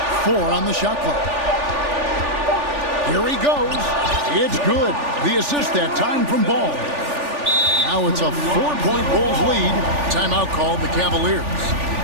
4 on the shot clock. Here he goes. It's good. The assist that time from Ball. Now it's a 4-point Bulls lead. Timeout called the Cavaliers.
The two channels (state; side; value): late; left; 3.4 ms